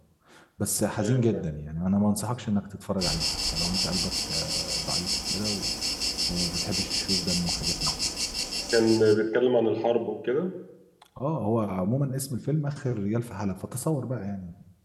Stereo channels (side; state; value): both; identical; correlation 1.00